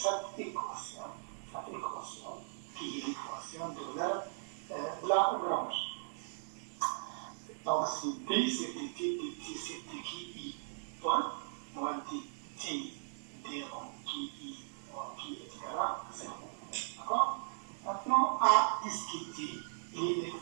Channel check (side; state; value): left; silent; digital silence